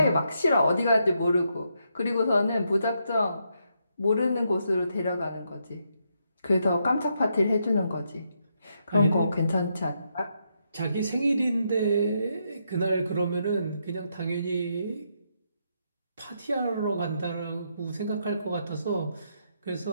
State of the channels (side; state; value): both; inverted; correlation -0.79